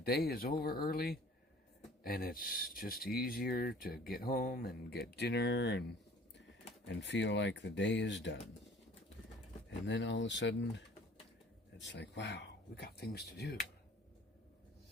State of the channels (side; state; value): both; normal; correlation 0.50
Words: is over early, and it's just easier to get home and get dinner and feel like the day is done. And then all of a sudden, it's like, wow, we got things to do.